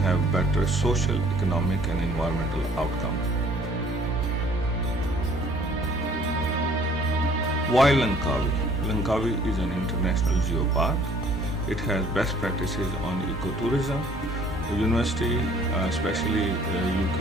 better social, economic and environmental outcomes. Why Langkawi? Langkawi is an international geopark. It has best practices on ecotourism. The university, especially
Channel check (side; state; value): both; normal; correlation 0.57